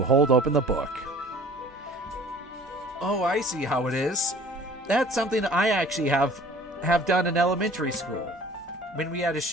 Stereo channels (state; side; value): normal; both; correlation 0.48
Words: hold open the book. Oh, I see how it is. That's something I actually have done in elementary school, when we had to